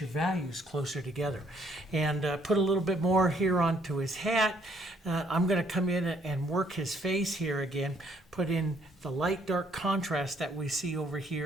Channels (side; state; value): both; normal; correlation 0.66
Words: values closer together. And put a little bit more here onto his hat. I'm going to come in and work his face here again. Put in the light dark contrast that we see over